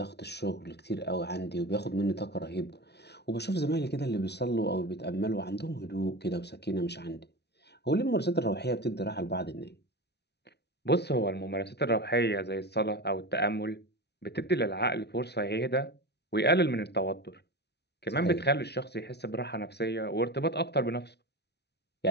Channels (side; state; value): right; late; 0.49 ms